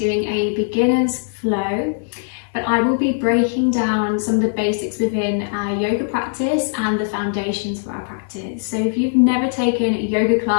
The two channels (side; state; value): right; silent; 66 dB below the other